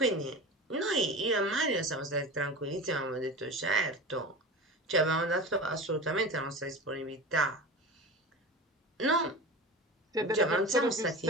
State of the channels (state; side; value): normal; both; correlation 0.30